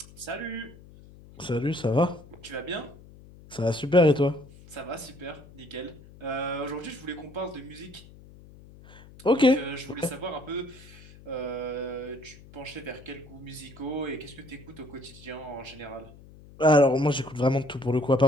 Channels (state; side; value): noise; left; hum, 21 dB below the sound